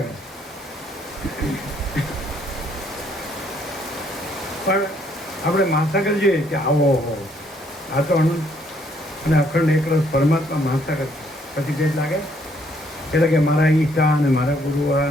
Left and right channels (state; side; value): normal; both; correlation 0.68